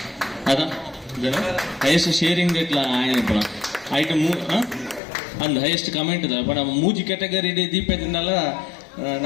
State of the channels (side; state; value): right; drops out; at 5.0 s